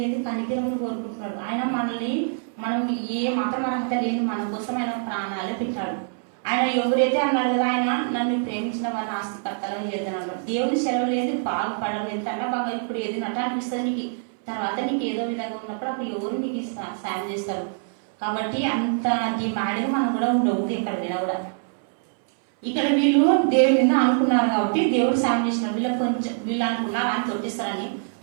ఏంటి? కనికరమును కోరుకుంటున్నాడు. ఆయన మనల్ని మనం ఏ మాత్రం అర్హత లేని మన కోసం ఆయన ప్రాణాలు పెట్టాడు. ఆయన ఎవరైతే అన్నాడు కదా, ఆయన నన్ను ప్రేమించిన వాళ్ళ ఆస్తికర్తలుగా చేద్దాను. దేవుని సెలవు లేదు బాగుపడదు. ఎంతన్నా బాగా ఇప్పుడు ఏది నట అనిపిస్తుంది నీకు, తర్వాత నీకు ఏదో విధంగా ఉన్నప్పుడు అప్పుడు ఎవరు నీకు సాయం చేస్తారు. కాబట్టి అంత డిమాండ్గా మనం కూడా ఉండవు ఎక్కడ మీద కూడా. ఇక్కడ వీళ్ళు దేవుడి మీద అనుకున్నారు కాబట్టి దేవుడు సాయం చేసినారు. వీళ్ళు అనుకున్నారు ఆయన తొట్టిస్తారని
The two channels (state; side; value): silent; left; 62 dB below the other